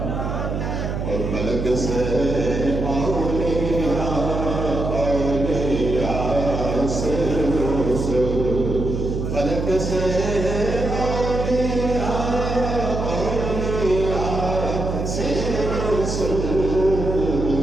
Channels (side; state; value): right; noise; hum, 3 dB below the sound